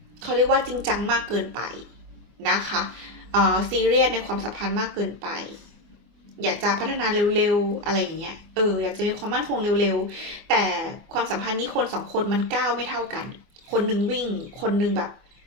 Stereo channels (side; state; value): left; late; 24 ms